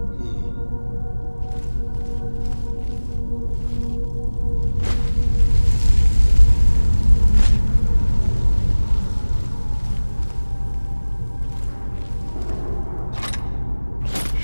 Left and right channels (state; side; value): inverted; both; correlation -1.00